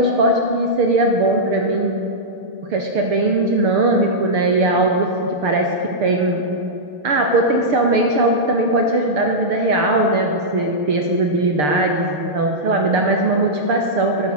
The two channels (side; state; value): left; late; 6.7 ms